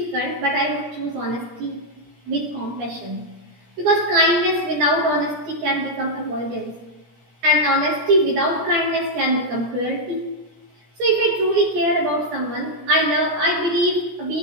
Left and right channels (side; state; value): left; late; 17 ms